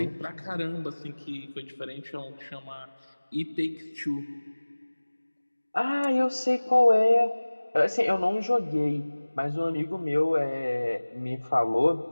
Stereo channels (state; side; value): inverted; both; correlation -1.00